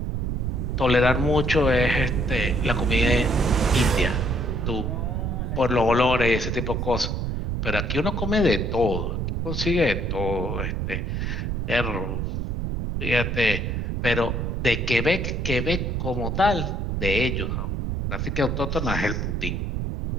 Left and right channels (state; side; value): noise; right; rumble, 1 dB below the sound